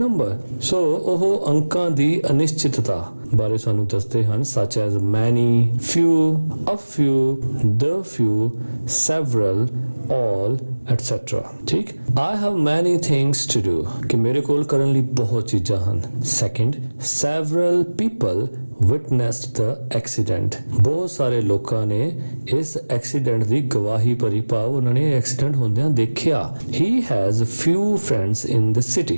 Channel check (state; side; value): inverted; both; correlation -1.00